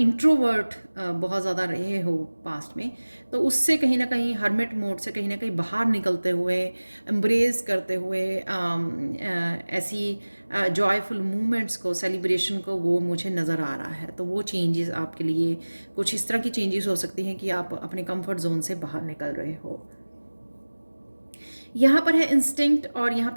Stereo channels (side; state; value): both; inverted; correlation -1.00